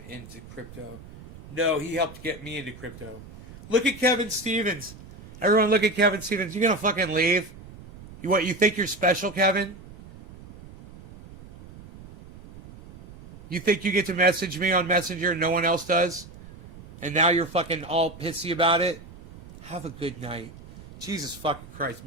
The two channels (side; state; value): right; noise; rumble, 17 dB below the sound